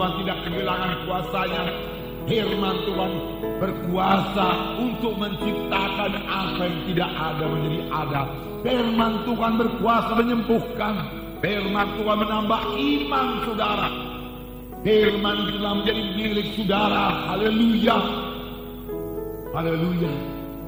tidak kehilangan kuasanya. Firman Tuhan berkuasa untuk menciptakan apa yang tidak ada menjadi ada. Firman Tuhan berkuasa menyembuhkan. Firman Tuhan menambah iman saudara. Firman Tuhan menjadi milik saudara. Haleluya. Haleluya.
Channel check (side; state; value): both; identical; correlation 1.00